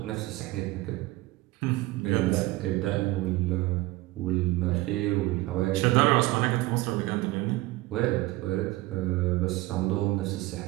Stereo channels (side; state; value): left; quieter; 19.4 dB